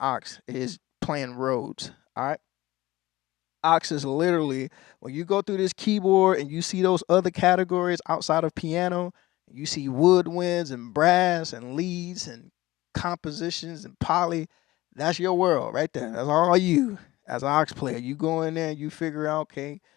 is playing Rhodes. All right. Ox is literally when you go through this keyboard and you see those other categories outside of piano, you see woodwinds and brass and leads and compositions and poly. That's your world right there. That's all you as an ox player. You go in there and you figure out, okay,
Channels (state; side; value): quieter; right; 18.0 dB